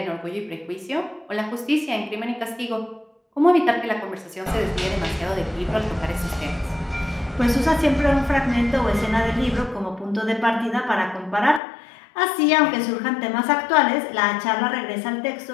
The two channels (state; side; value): drops out; right; at 11.6 s